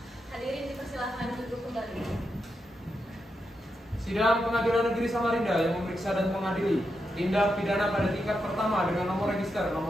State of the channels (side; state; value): both; normal; correlation 0.85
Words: Hadirin dipersilahkan duduk kembali. Sidang Pengadilan Negeri Samarinda yang memeriksa dan mengadili tindak pidana pada tingkat pertama dengan nomor register